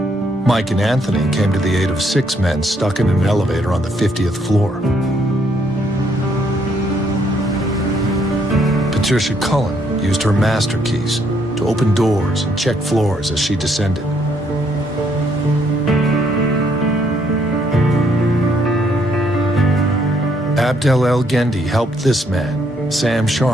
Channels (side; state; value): both; normal; correlation 0.70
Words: Mike and Anthony came to the aid of 6 men stuck in an elevator on the 50th floor. Patricia Cullen used her master keys to open doors and check floors as she descended. Abdel El Gendi helped this man, Sam